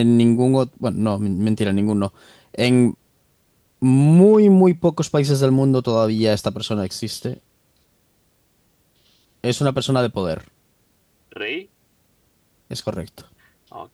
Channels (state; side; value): identical; both; correlation 1.00